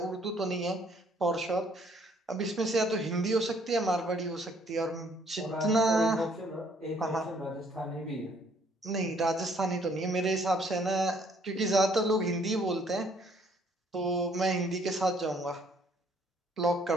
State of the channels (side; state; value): both; normal; correlation 0.64